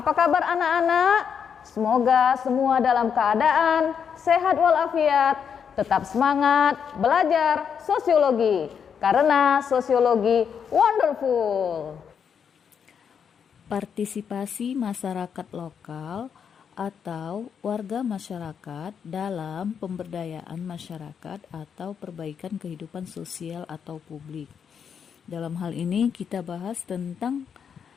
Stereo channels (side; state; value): right; quieter; 7.3 dB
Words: kabar anak-anak? Semoga semua dalam keadaan sehat walafiat, tetap semangat belajar sosiologi. Karena sosiologi wonderful. Partisipasi masyarakat lokal atau warga masyarakat dalam pemberdayaan masyarakat atau perbaikan kehidupan sosial atau publik. Dalam hal ini kita bahas tentang